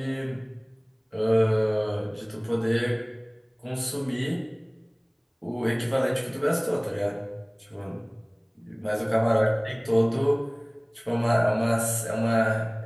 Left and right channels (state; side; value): identical; both; correlation 1.00